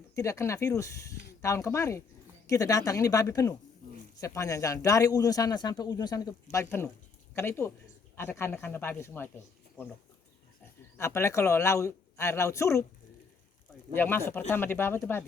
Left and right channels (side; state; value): right; quieter; 5.2 dB